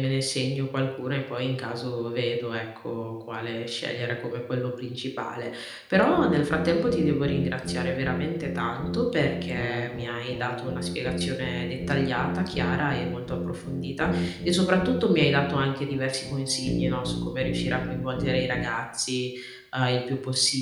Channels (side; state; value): both; identical; correlation 1.00